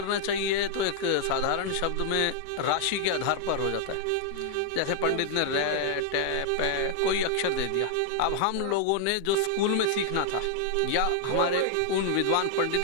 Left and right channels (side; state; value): both; different; correlation -0.01